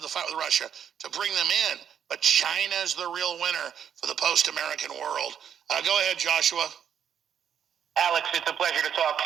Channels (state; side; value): quieter; left; 8.6 dB